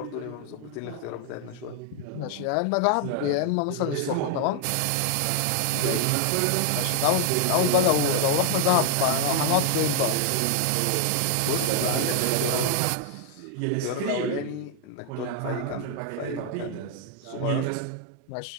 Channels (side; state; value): both; different; correlation 0.00